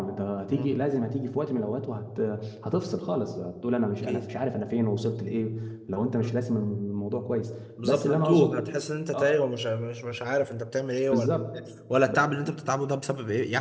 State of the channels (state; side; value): identical; both; correlation 1.00